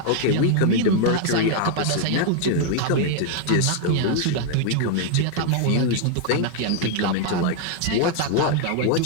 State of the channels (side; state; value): both; different; correlation 0.00